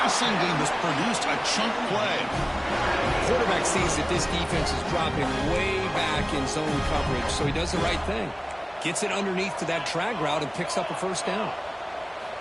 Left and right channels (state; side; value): identical; both; correlation 1.00